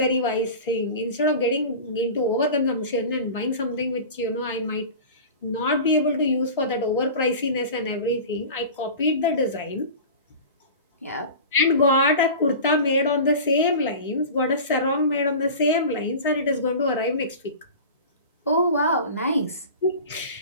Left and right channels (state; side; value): inverted; both; correlation -0.35